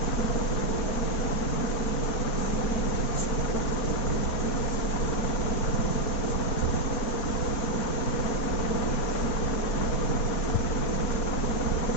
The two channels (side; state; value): right; late; 4.2 ms